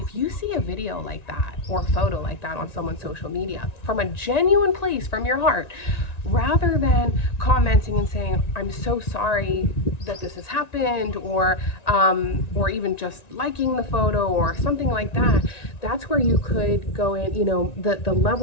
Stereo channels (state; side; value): late; right; 1.9 ms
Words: you see a video like that or photo like that on someone's social media from a genuine place from your heart, rather than commenting and saying, I'm so sorry that this has happened, or even just liking the photo or something like that, that's where you could go in. The